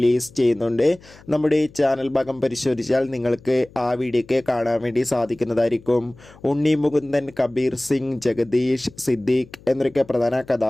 ചെയ്യുന്നുണ്ട്. നമ്മുടെ ചാനൽ ഭാഗം പരിശോധിച്ചാൽ നിങ്ങൾക്ക് ആ വീഡിയോയ്ക്ക് കാണാൻ വേണ്ടി സാധിക്കുന്നതായിരിക്കും. ഉണ്ണി മുകുന്ദൻ, കബീർ സിംഗ്, ജഗദീഷ്, സിദ്ദീഖ് എന്നൊക്കെ പ്രധാന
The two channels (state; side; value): noise; left; hum, 24 dB below the sound